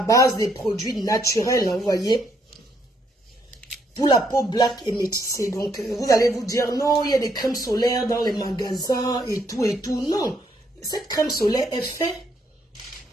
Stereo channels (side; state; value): both; normal; correlation 0.72